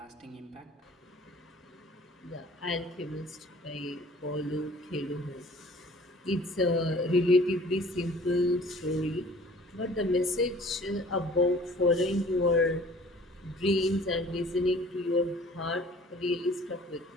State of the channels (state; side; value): normal; both; correlation 0.50